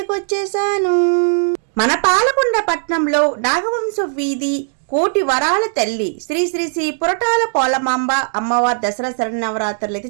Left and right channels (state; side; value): silent; left; digital silence